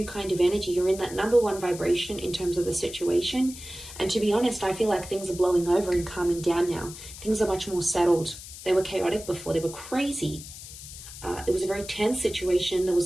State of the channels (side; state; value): left; noise; hiss, 14 dB below the sound